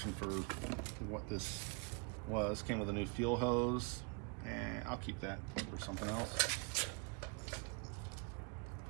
for what this was. Came with a new fuel hose, and I'll keep that for something else.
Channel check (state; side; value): quieter; left; 34.3 dB